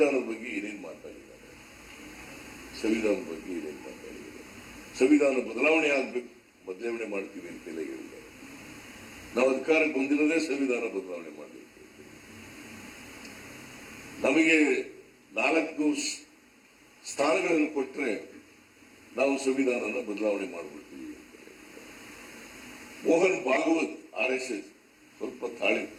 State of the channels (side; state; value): both; identical; correlation 1.00